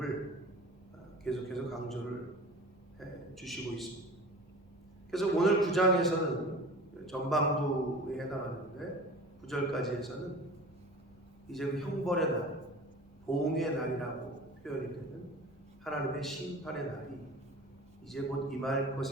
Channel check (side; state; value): both; normal; correlation 0.38